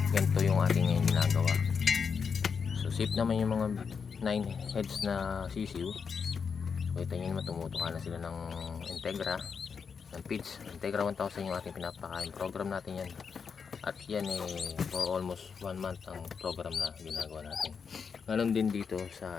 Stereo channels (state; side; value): quieter; right; 6.1 dB